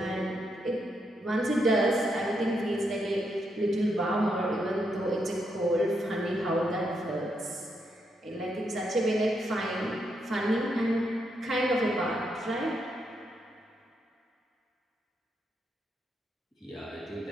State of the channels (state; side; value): normal; both; correlation 0.80